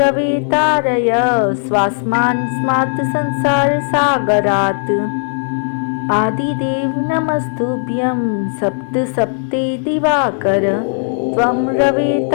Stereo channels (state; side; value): silent; right; digital silence